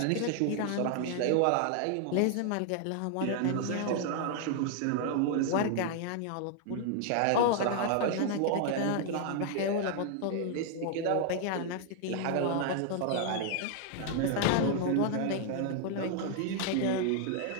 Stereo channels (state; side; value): different; both; correlation 0.00